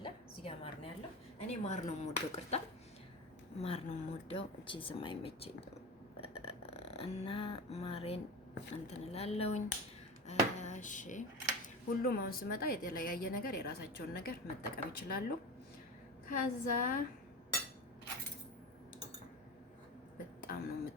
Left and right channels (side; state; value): both; normal; correlation 0.27